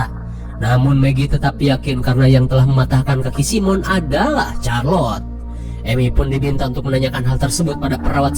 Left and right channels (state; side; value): identical; both; correlation 1.00